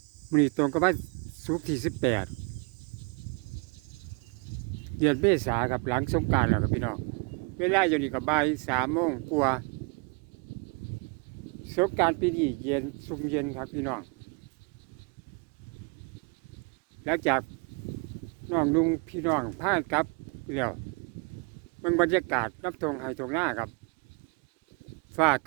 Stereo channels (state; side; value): quieter; left; 32.2 dB